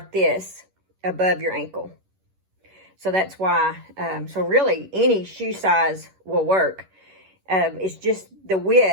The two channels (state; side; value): late; left; 11 ms